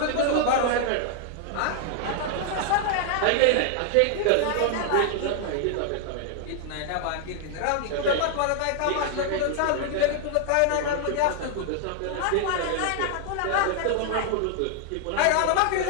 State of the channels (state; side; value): different; both; correlation 0.00